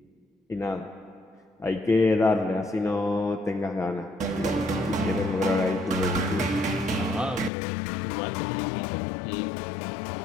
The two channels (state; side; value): drops out; right; at 7.5 s